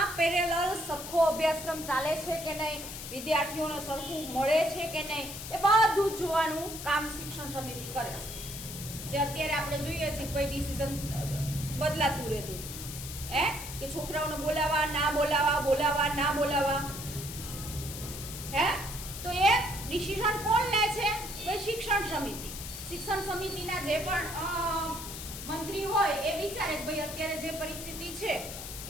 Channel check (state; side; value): noise; left; hiss, 9 dB below the sound